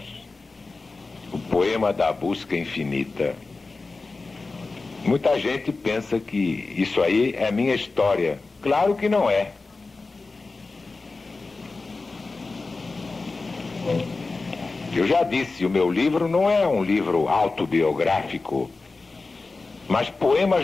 o poema da busca infinita. Muita gente pensa que isso aí é minha história. Claro que não é. Eu já disse, o meu livro não é um livro autobiográfico, mas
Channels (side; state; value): right; quieter; 3.7 dB